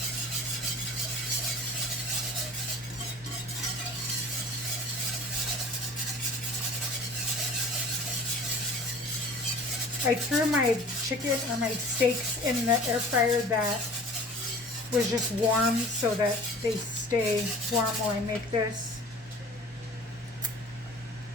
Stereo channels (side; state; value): both; normal; correlation 0.44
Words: I threw my chicken or my steaks in the air fryer that was just warm so that they stay warm while I make this.